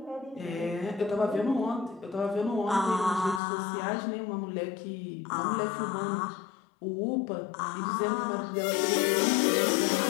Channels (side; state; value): right; drops out; at 3.4 s